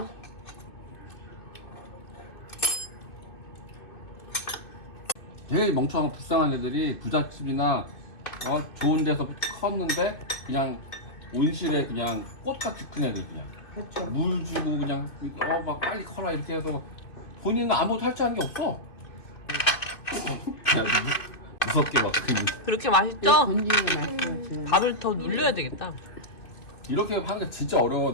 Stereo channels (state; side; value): late; right; 2.6 ms